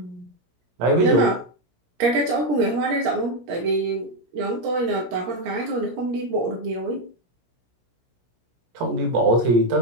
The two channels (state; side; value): late; left; 17 ms